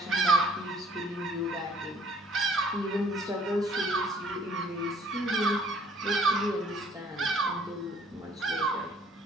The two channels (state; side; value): normal; both; correlation 0.58